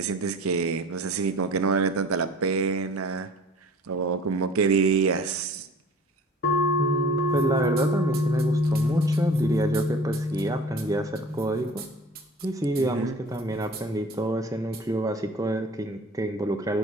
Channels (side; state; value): both; normal; correlation 0.45